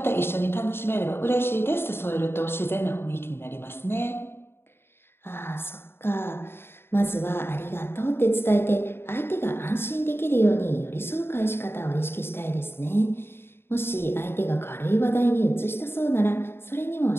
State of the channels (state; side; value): late; right; 0.11 ms